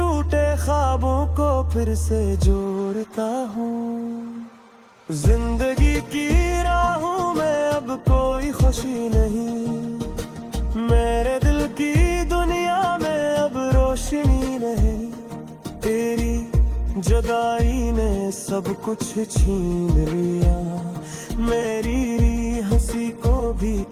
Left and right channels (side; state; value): both; identical; correlation 1.00